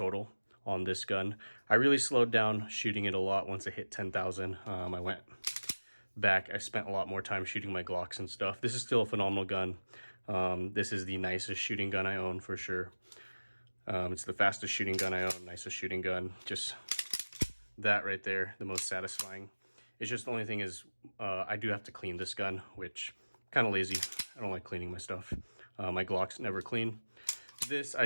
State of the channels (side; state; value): both; inverted; correlation -1.00